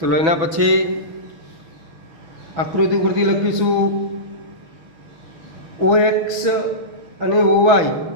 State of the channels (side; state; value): left; late; 6.0 ms